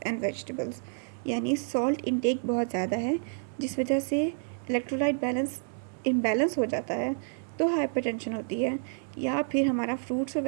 and vegetables, यानी सॉल्ट इनटेक बहुत ज़्यादा है जिस वजह से इलेक्ट्रोलाइट बैलेंस इम्बैलेंस हो जाता है तो हाइपरटेंशन होती है, या फिर हमारा फ्रूट्स और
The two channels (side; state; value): left; silent; 58 dB below the other